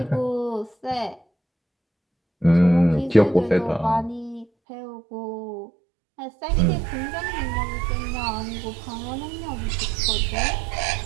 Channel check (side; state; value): left; drops out; at 4.5 s